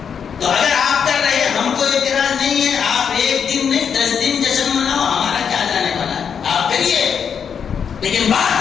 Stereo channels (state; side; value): quieter; right; 7.2 dB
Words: تو اگر آپ کر رہے ہیں ہم کو اعتراض نہیں ہے. آپ ایک دن نہیں 10 دن جشن مناؤ، ہمارا کیا جانے والا ہے، آپ کریے، لیکن